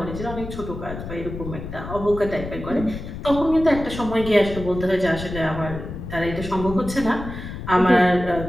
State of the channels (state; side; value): noise; left; rumble, 9 dB below the sound